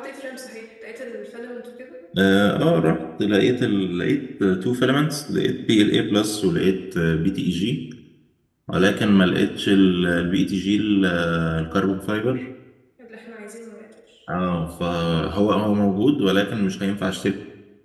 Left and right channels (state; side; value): identical; both; correlation 1.00